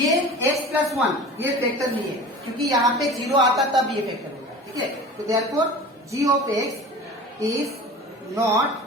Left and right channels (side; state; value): both; normal; correlation 0.38